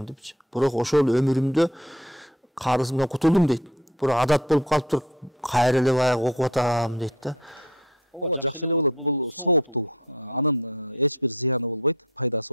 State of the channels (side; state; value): both; normal; correlation 0.47